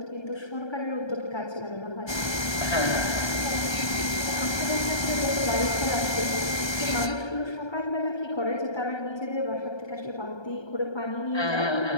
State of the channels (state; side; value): late; right; 1.3 ms